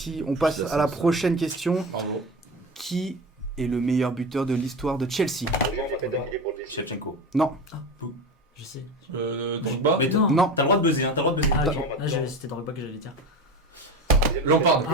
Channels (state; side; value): normal; both; correlation 0.27